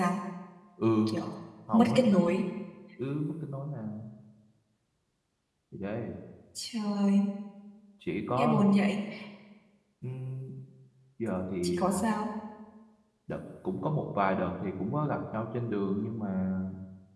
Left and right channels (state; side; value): identical; both; correlation 1.00